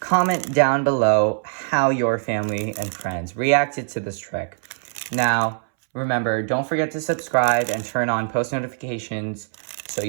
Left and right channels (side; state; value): left; silent; 64 dB below the other